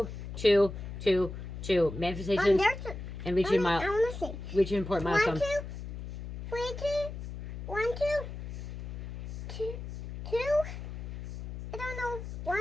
2, 2, 2. Manifestations and reaching I want to say. reaching important milestone. 1, 2, 3, 2, 1, 2, 2, 2. I don't know.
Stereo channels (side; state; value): left; noise; hum, 8 dB below the sound